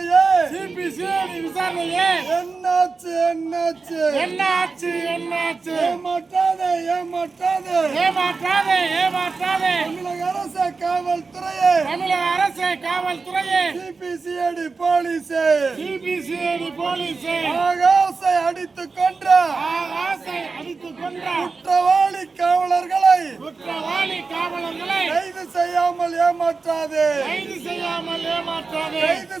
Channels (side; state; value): left; quieter; 4.4 dB